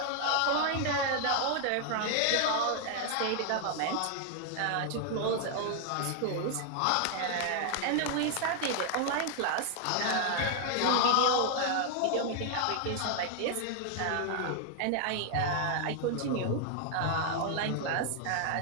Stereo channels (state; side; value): different; both; correlation 0.00